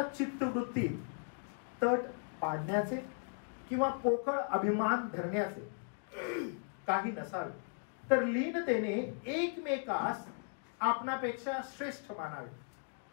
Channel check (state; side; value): silent; right; 53 dB below the other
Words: चित्तवृत्तीत तट पाडण्याचे किंवा पोकळ अभिमान धरण्याचे काही नसावे, तर लीनतेने एकमेकास आपणापेक्षा श्रेष्ठ मानावे.